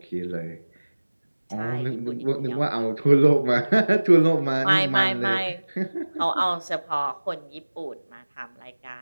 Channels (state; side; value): inverted; both; correlation -1.00